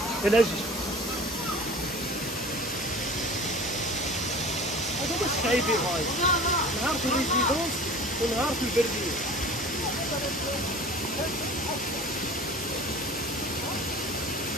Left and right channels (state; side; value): normal; both; correlation 0.41